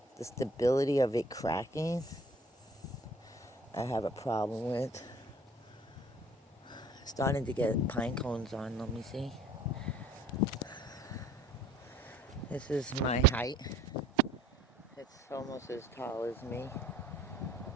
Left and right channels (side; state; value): both; normal; correlation 0.52